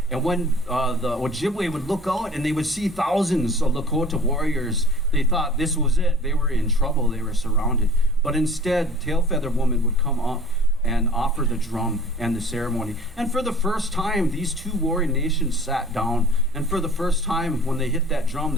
And when the Ojibwe would look out and they would see thousands of Lakota warriors, they thought this was it. They were in trouble. They were surrounded. But instead, Tail Feather Woman would come up and offer the drum and the ceremony. And for the first time, these two warring nations sat down. And for the first time, when they hit that drum,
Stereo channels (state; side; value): normal; both; correlation 0.46